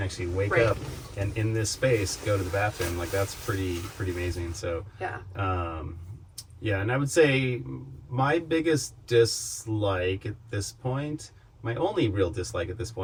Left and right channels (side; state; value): both; identical; correlation 1.00